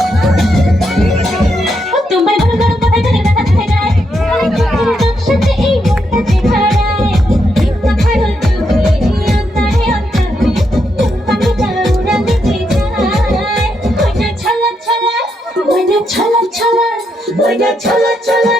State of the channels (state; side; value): normal; both; correlation 0.80